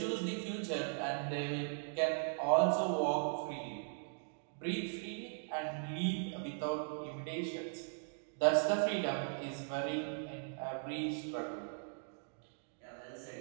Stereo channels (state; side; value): silent; left; digital silence